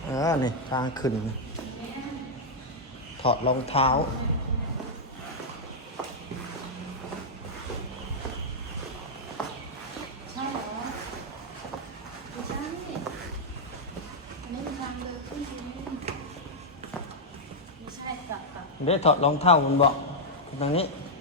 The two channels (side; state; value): both; normal; correlation -0.03